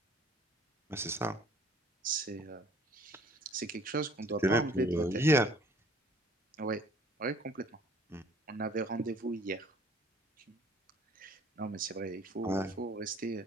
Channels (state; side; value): normal; both; correlation 0.56